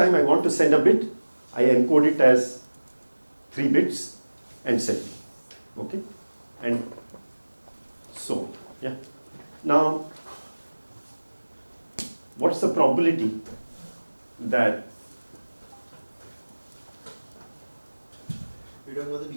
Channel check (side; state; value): both; inverted; correlation -1.00